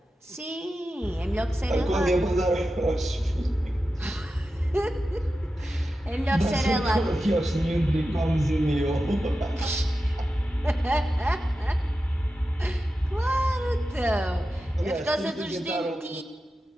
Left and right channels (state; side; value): normal; both; correlation 0.92